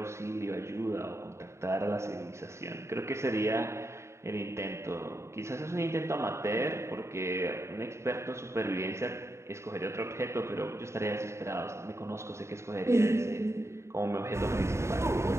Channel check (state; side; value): late; left; 0.13 ms